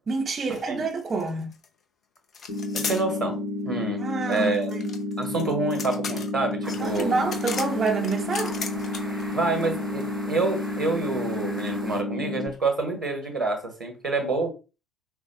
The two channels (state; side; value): normal; both; correlation 0.54